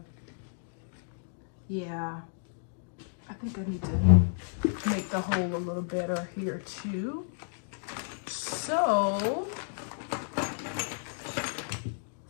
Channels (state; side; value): silent; right; digital silence